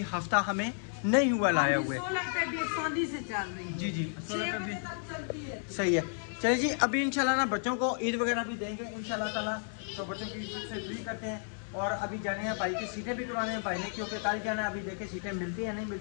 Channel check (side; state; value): right; silent; 56 dB below the other